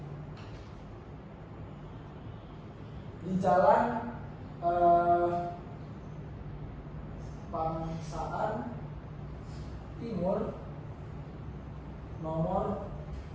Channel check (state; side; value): identical; both; correlation 1.00